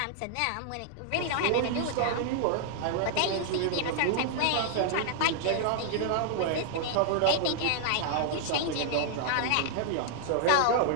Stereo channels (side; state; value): both; different; correlation -0.01